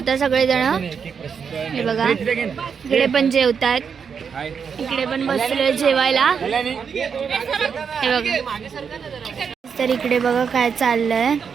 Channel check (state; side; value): quieter; left; 6.5 dB